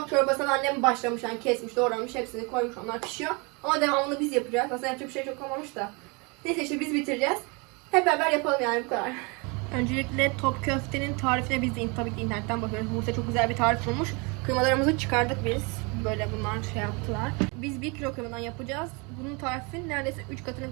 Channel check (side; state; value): left; quieter; 30.1 dB